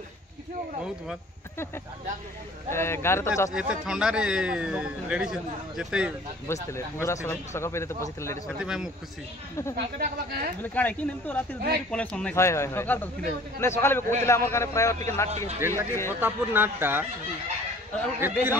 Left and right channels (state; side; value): normal; both; correlation 0.50